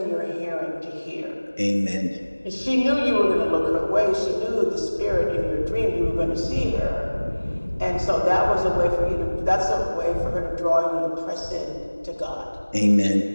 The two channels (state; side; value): inverted; both; correlation -1.00